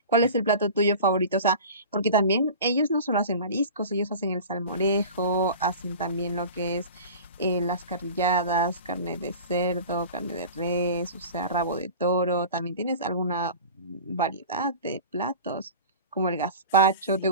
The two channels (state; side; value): inverted; both; correlation -0.37